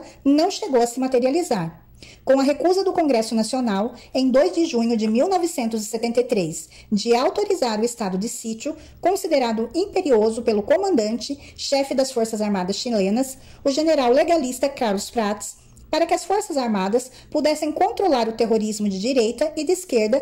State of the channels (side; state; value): both; identical; correlation 1.00